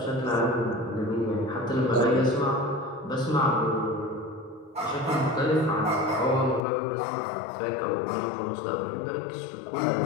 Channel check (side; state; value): right; drops out; at 6.6 s